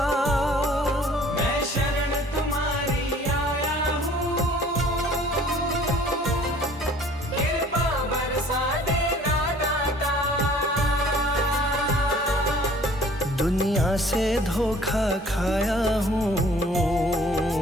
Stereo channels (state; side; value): normal; both; correlation 0.53